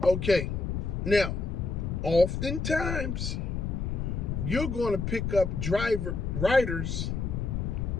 Okay. Now, oftentimes, you're going to pick up riders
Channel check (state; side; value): noise; left; rumble, 2 dB below the sound